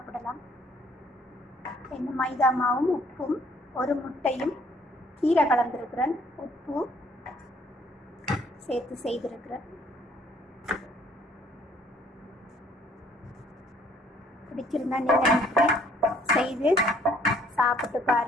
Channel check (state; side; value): normal; both; correlation 0.61